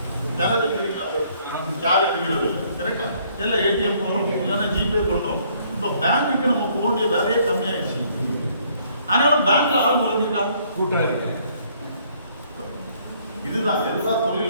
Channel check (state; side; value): inverted; both; correlation -0.64